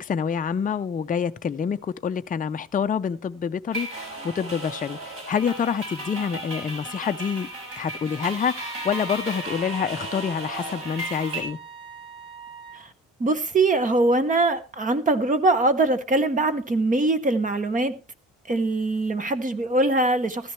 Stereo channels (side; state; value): both; normal; correlation 0.41